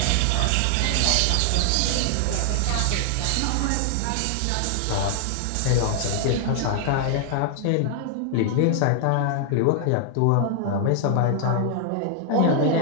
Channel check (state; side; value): different; both; correlation 0.00